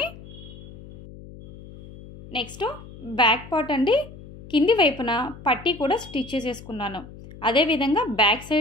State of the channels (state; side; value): noise; left; hum, 17 dB below the sound